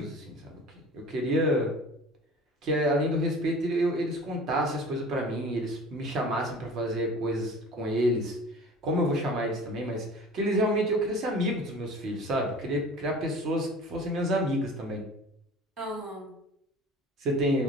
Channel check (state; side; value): normal; both; correlation 0.42